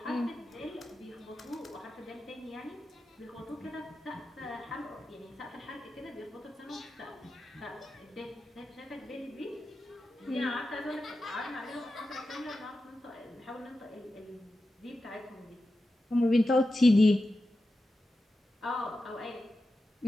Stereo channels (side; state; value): both; normal; correlation 0.92